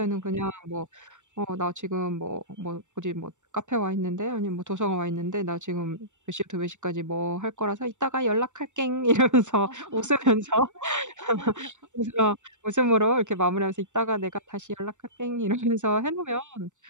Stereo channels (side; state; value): left; late; 0.85 ms